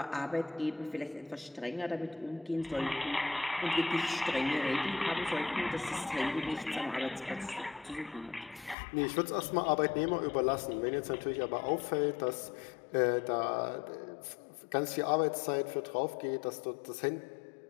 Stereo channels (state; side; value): drops out; right; at 8.8 s